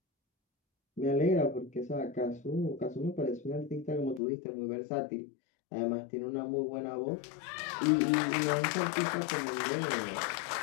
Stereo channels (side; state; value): right; drops out; at 4.2 s